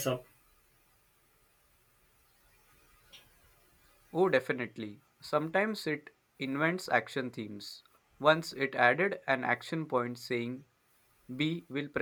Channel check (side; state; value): both; identical; correlation 1.00